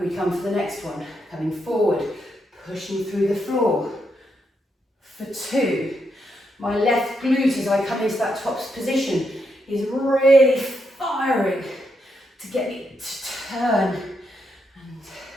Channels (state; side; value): normal; both; correlation 0.81